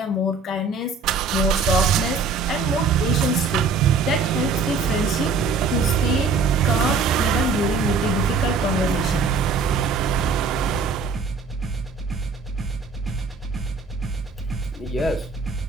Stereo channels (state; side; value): quieter; left; 4.4 dB